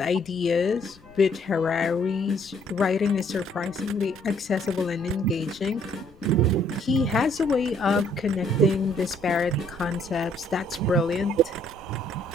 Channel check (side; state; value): left; noise; rumble, 26 dB below the sound